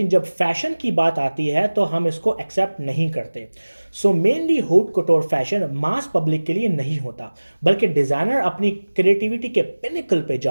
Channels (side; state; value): both; inverted; correlation -1.00